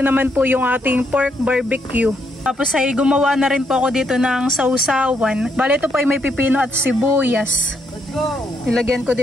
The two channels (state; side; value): normal; both; correlation 0.76